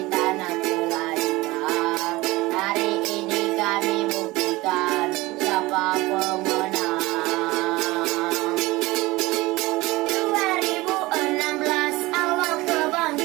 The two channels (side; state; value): left; quieter; 20.7 dB